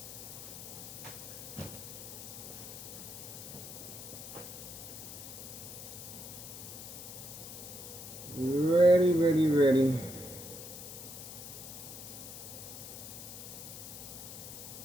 Ready, ready, ready.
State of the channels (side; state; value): left; noise; hiss, 10 dB below the sound